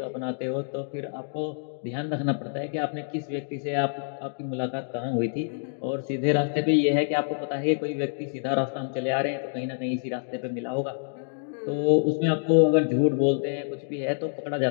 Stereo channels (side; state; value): right; silent; digital silence